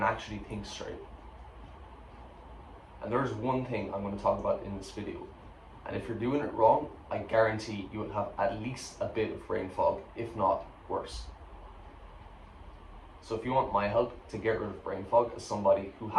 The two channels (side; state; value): both; identical; correlation 1.00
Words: actually think straight. And there's one thing I'm going to talk about in this video. And if you're doing it wrong, I guarantee you will have at least a bit of brain fog, if not worse. So if you want my help to get rid of brain fog as somebody who